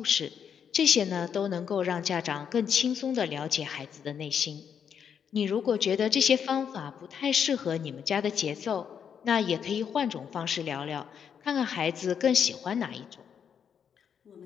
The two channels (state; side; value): quieter; right; 7.7 dB